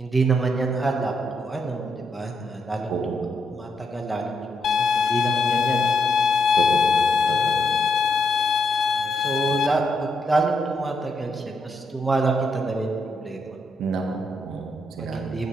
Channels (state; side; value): normal; both; correlation 0.78